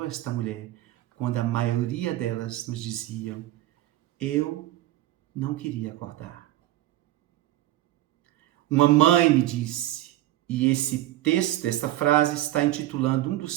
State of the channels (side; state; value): left; quieter; 15.2 dB